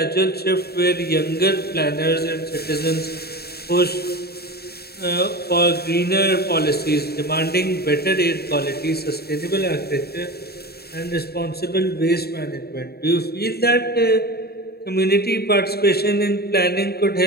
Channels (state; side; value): late; right; 0.46 ms